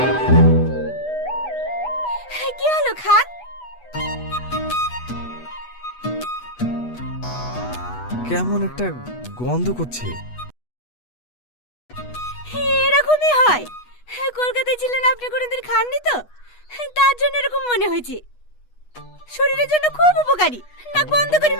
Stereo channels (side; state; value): right; late; 8.2 ms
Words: কি হলো খান? কেমন একটা গন্ধ করছে। এরকমই হয়। কলকাতায় ছিলেন আপনি কোনোদিন খাননি তো, তার জন্য এরকম মনে হয়েছে। শরীরের জন্য খুব উপকারী, নাক বন্ধ করে